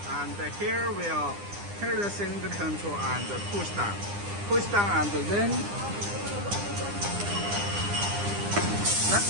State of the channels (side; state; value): left; late; 9.9 ms